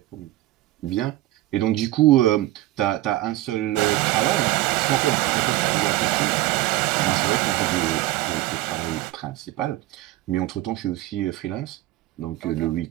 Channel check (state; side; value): quieter; left; 16.5 dB